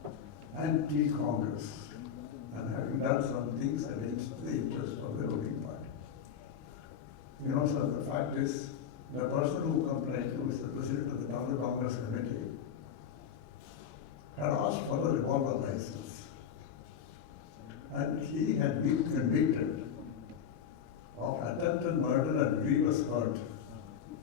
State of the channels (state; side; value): quieter; right; 8.1 dB